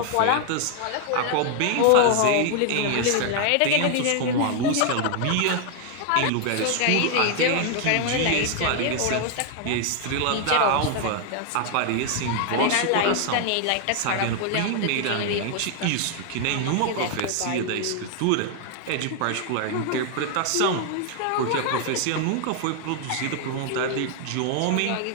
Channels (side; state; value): both; different; correlation 0.00